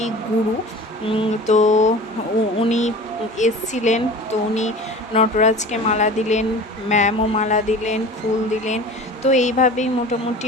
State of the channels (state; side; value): normal; both; correlation 0.38